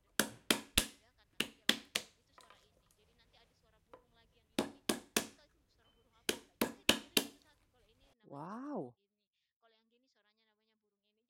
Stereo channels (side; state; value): both; identical; correlation 1.00